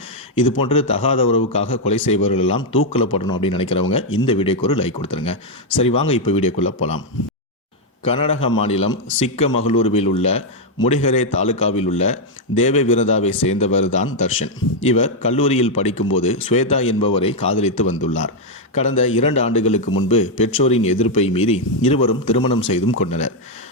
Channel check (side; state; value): both; normal; correlation 0.00